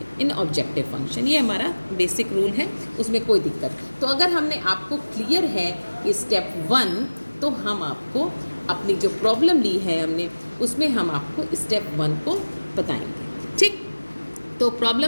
इन ऑब्जेक्टिव फंक्शन। ये हमारा बेसिक रूल है, उसमें कोई दिक्कत। तो अगर हमने आपको क्लियर है कि स्टेप वन, तो हम आपको अपनी जो प्रॉब्लम ली है हमने उसमें हम आपको स्टेप वन को बताएंगे। ठीक, तो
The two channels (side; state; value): both; inverted; correlation -1.00